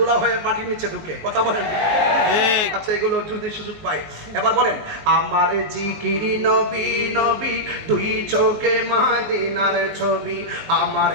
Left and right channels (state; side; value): late; left; 19 ms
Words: হয়ে মাটির নিচে ঢুকে। কথা বলেন? আচ্ছা, এগুলো যদি সুযোগ পাই, এবার বলেন, আমার জিকিরি নবী নবী, দুই চোখে মদিনার ছবি। আমার